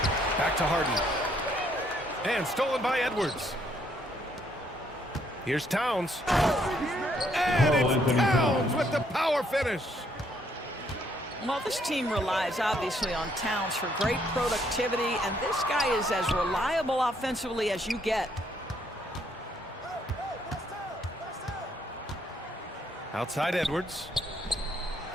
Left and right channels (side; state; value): both; normal; correlation 0.70